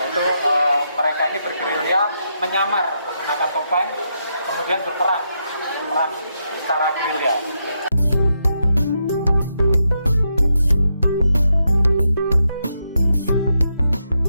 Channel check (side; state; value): both; inverted; correlation -0.82